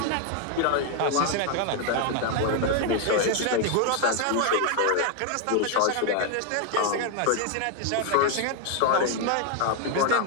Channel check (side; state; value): both; different; correlation 0.00